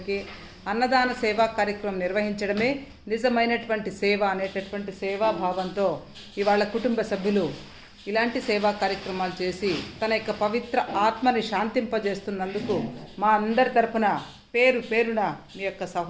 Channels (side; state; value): both; identical; correlation 1.00